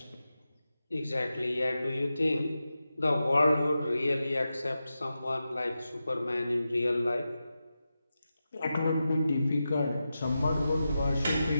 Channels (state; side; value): inverted; both; correlation -0.91